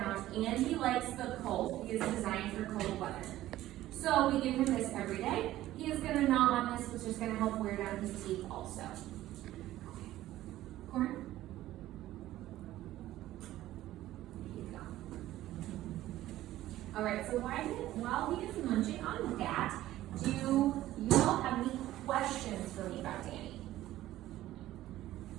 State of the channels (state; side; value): quieter; left; 14.7 dB